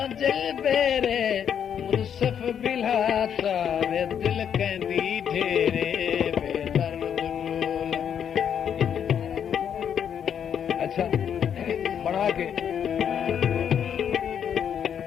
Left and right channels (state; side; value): quieter; right; 8.4 dB